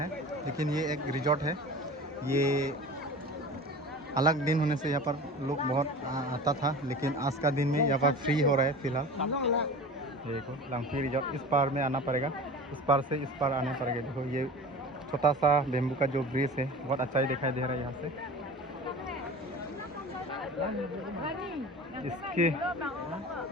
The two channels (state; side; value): normal; both; correlation 0.36